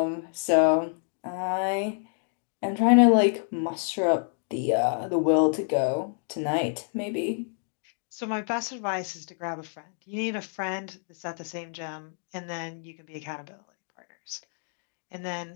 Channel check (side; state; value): right; silent; 59 dB below the other